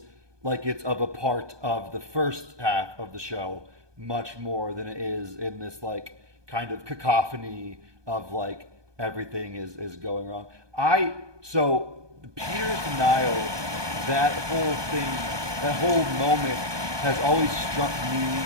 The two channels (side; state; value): left; late; 1.2 ms